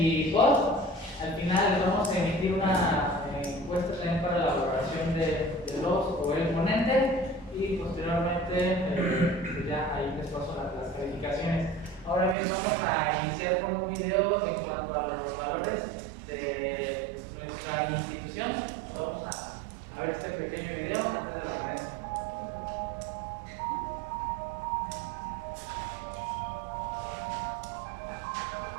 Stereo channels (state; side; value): drops out; left; at 12.4 s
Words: post. Al final les vamos a emitir una encuesta también para la valoración de los o el ponente y posteriormente pues ya ahí les paso las calificaciones. Ahora bien, vamos a iniciar con un video en cuanto a los valores de nuestra institución. Vamos a ver este pequeño video antes de la ponencia.